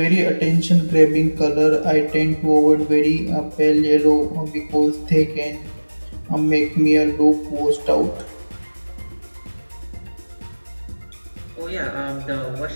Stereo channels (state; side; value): inverted; both; correlation -1.00